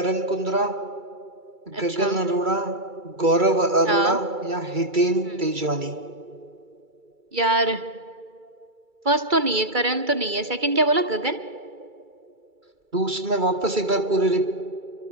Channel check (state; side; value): late; left; 2.3 ms